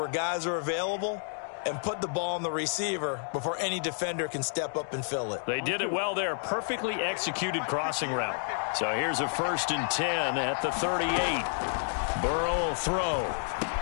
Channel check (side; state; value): right; silent; digital silence